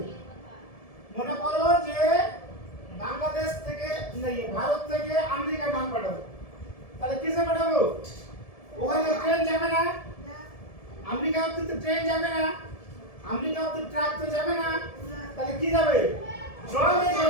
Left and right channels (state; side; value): late; right; 1.7 ms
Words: মনে করো যে বাংলাদেশ থেকে ভারত থেকে আমেরিকা মাল পাঠাবো, তাহলে কিসে পাঠাবো? ওখানে ট্রেন যাবে না, আমেরিকা অব্দি তো ট্রেন যাবে না, আমেরিকা অব্দি ট্রাক তো যাবে না, তাহলে কি যাবে? জলে